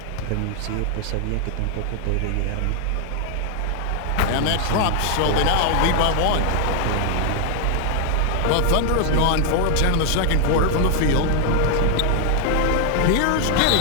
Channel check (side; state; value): both; different; correlation 0.00